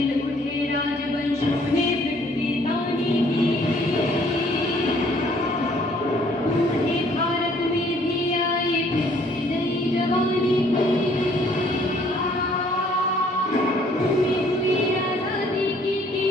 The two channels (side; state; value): both; normal; correlation 0.61